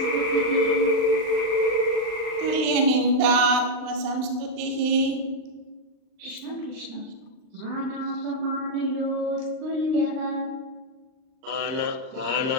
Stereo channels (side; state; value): left; late; 39 ms